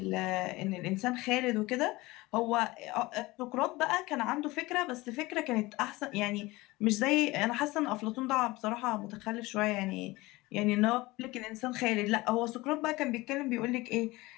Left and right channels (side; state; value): right; quieter; 20.9 dB